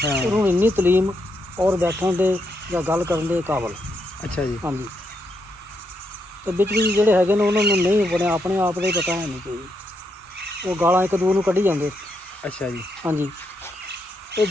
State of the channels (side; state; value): both; normal; correlation 0.79